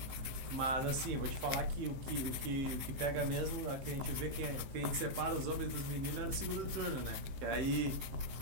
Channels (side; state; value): left; late; 15 ms